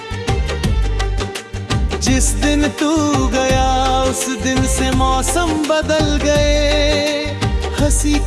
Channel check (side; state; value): both; identical; correlation 1.00